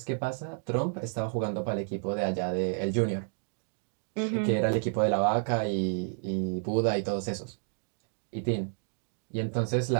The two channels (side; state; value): left; silent; 57 dB below the other